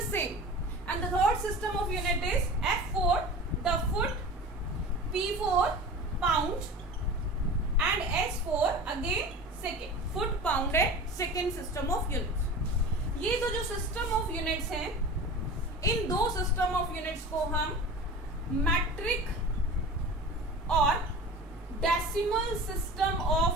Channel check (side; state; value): both; normal; correlation 0.35